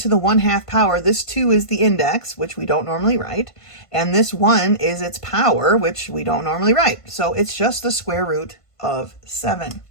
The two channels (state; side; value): late; right; 1.5 ms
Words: the 1/2 power, this 2 is the index, which we don't normally write, and this 1 is its power, which we don't normally write. So it's just the square root of 7.